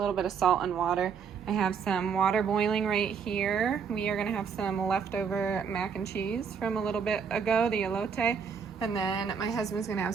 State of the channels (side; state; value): left; quieter; 6.4 dB